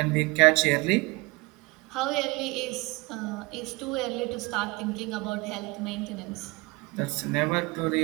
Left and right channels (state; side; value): quieter; left; 24.8 dB